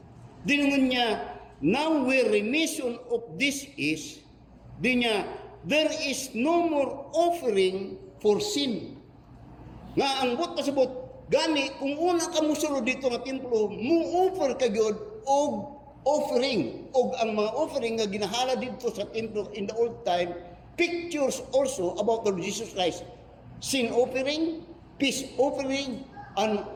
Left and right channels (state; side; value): identical; both; correlation 1.00